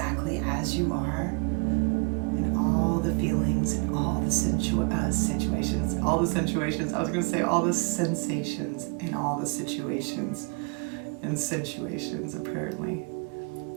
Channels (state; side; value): quieter; left; 34.5 dB